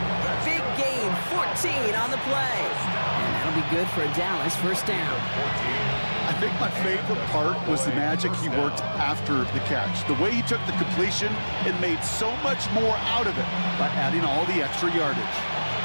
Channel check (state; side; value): inverted; both; correlation -1.00